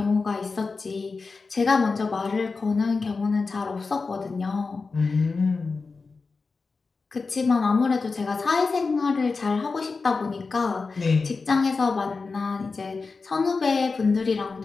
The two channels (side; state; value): right; quieter; 4.3 dB